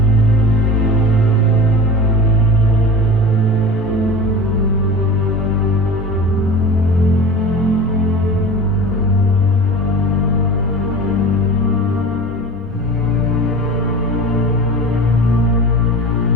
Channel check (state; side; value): normal; both; correlation 0.35